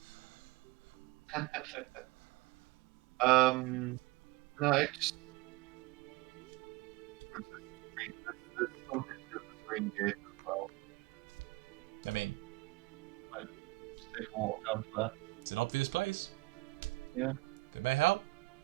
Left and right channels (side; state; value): left; quieter; 23.6 dB